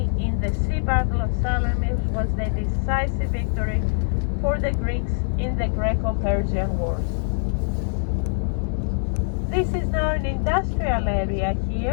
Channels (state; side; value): silent; right; 63 dB below the other